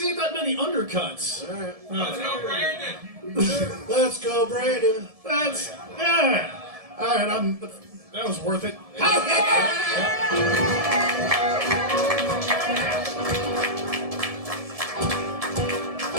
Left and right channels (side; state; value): left; late; 1.7 ms